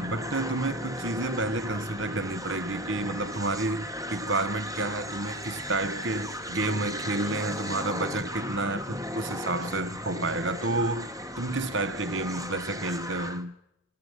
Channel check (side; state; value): both; normal; correlation 0.25